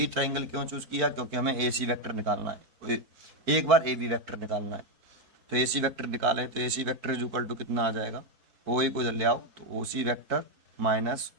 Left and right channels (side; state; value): left; late; 4.6 ms